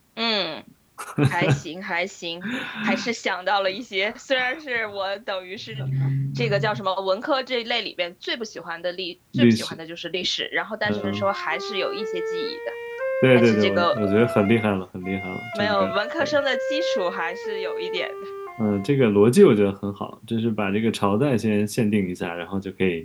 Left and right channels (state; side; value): identical; both; correlation 1.00